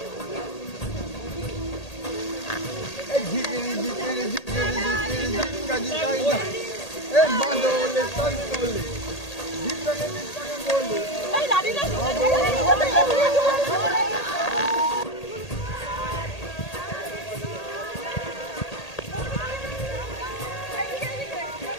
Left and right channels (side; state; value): right; late; 1.8 ms